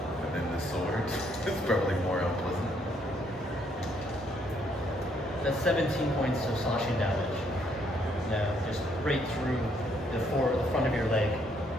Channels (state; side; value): normal; both; correlation 0.70